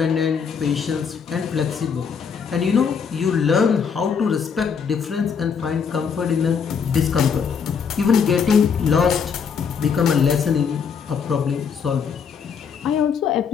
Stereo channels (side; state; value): right; quieter; 6.5 dB